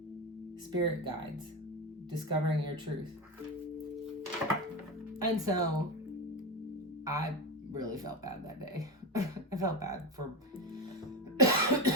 Spirit guides, discovering your truth. And so, I really felt bad that day. I felt bad for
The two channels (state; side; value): normal; both; correlation 0.17